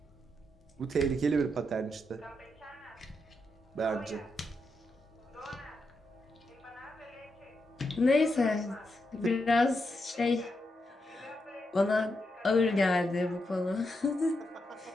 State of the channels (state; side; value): normal; both; correlation 0.84